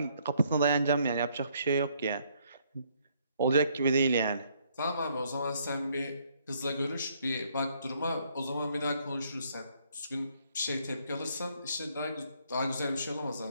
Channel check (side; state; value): both; inverted; correlation -0.69